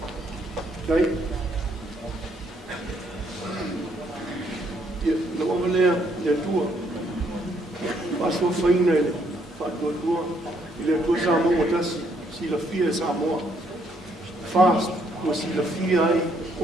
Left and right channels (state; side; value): normal; both; correlation 0.70